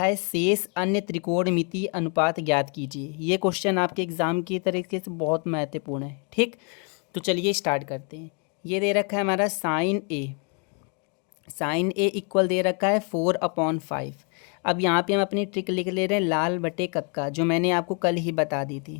है शेष अन्य त्रिकोणमिति अनुपात ज्ञात कीजिए। ये क्वेश्चन आपके एग्ज़ाम की तरीके से बहुत महत्वपूर्ण है। ठीक, तो चलिए स्टार्ट करते हैं। ये दे रखा है हमारा साइन ए इक्वल दे रखा है 4/5। अब यहाँ पे हम अपनी ट्रिक लिख ले रहे हैं लाल बटे कक्का, जो मैंने आपको कल ही बता दी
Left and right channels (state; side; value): quieter; right; 37.6 dB